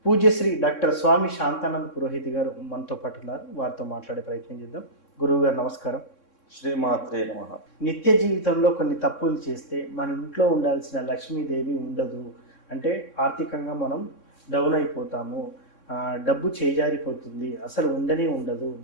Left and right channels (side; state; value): right; late; 3.6 ms